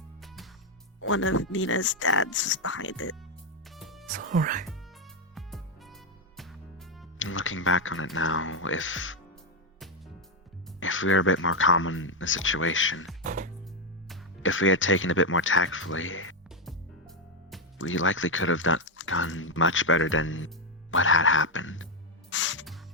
one of Nina's dads was behind it. It's alright. Looking back on it now, if we were a bit more calm in the situation, if we had taken a bit more tactfully, we likely could have done much better than what had happened.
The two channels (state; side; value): normal; both; correlation 0.06